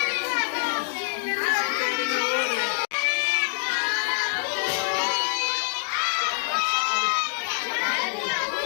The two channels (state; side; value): silent; right; digital silence